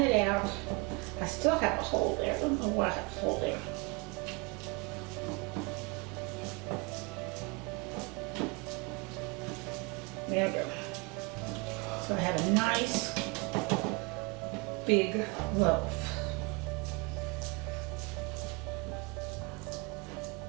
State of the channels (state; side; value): quieter; left; 28.7 dB